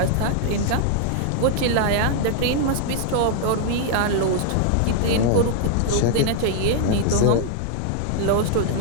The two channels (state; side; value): different; both; correlation 0.00